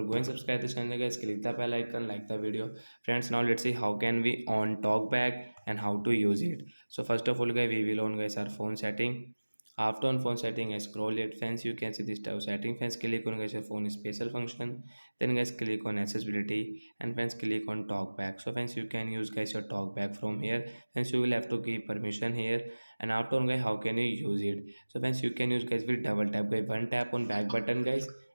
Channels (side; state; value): both; inverted; correlation -1.00